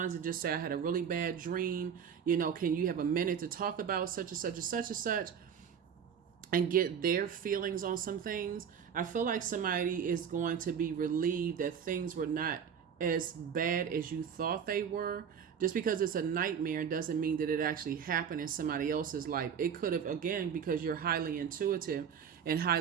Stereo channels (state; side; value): quieter; left; 7.6 dB